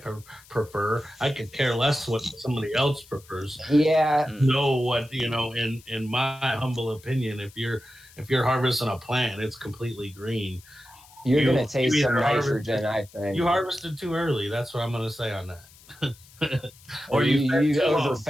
prefer. I could care less what somebody else prefers. Yeah, Know what in my humble opinion, if you're harvesting a plant, it's completely green. you're You gonna taste some either harvested nitrogen, I think. you harvested too early. That's what I'm going to say on that. Or Or you you fed you too long.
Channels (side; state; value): left; noise; hiss, 24 dB below the sound